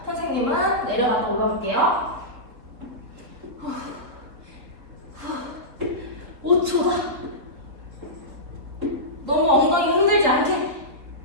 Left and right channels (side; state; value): left; late; 3.8 ms